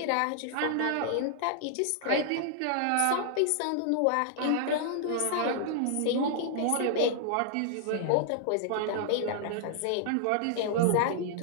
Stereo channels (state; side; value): different; both; correlation -0.01